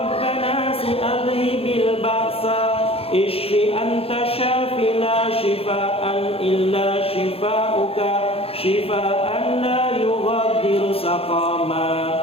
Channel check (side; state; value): right; late; 0.28 ms